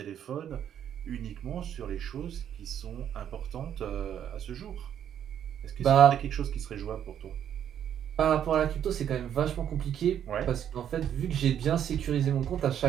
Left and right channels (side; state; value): left; quieter; 9.7 dB